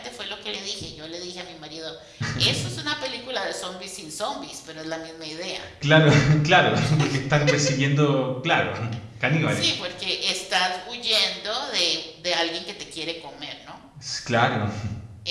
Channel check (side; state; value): both; identical; correlation 1.00